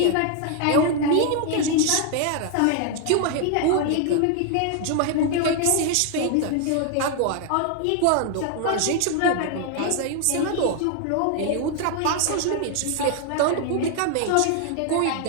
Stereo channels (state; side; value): different; both; correlation 0.00